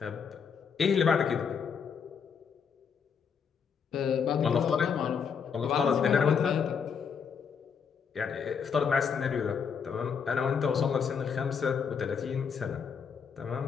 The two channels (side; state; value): right; quieter; 6.6 dB